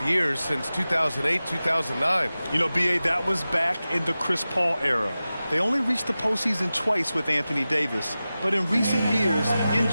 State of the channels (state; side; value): inverted; both; correlation -0.95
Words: years since 2008, 2009. You know, B.A., that was back in the Chris Paul era. They only reached the postseason twice with Anthony Davis. But in recent years,